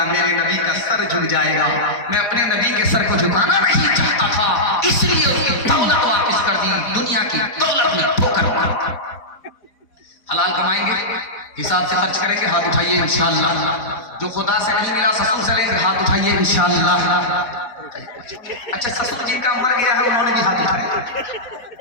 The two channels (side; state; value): right; late; 4.1 ms